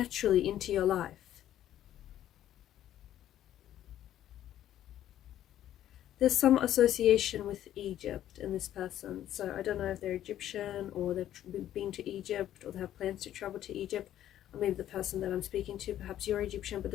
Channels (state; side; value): quieter; right; 11.9 dB